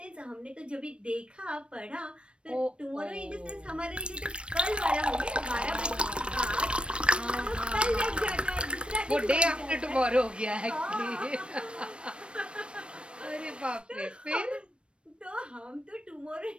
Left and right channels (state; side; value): late; left; 0.058 ms